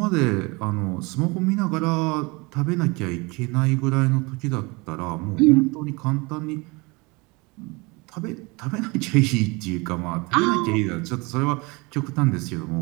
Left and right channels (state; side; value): quieter; left; 26.3 dB